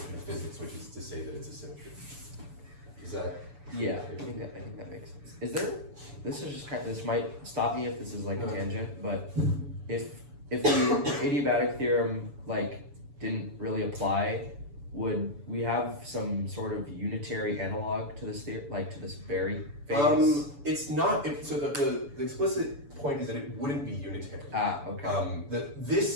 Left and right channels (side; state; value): left; late; 7.0 ms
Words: of physics, which is to say that it's a symmetry. Is that? Yeah, I think that makes sense. Is there? This is just this might stop me if this is like a tangent, but if the adiabatic theorem like didn't really apply, would we have some sort of unitary analog to this to this Berry phase? It's not. So the explicit point is that it wouldn't be unitary. Ah, okay.